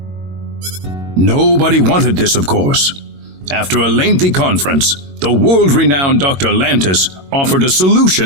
Nobody wanted this, of course. After a lengthy conference, the world-renowned Dr. Lantis offered a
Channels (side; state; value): left; late; 22 ms